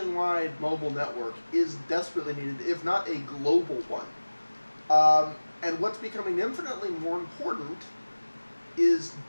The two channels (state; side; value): inverted; both; correlation -1.00